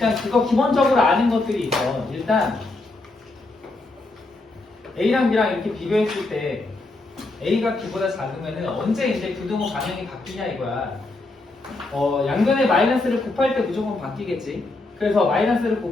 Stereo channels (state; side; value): quieter; right; 3.0 dB